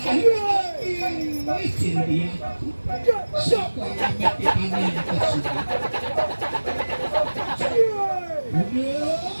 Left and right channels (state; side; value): inverted; both; correlation -1.00